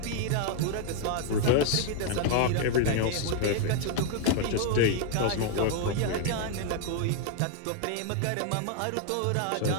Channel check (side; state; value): both; different; correlation 0.00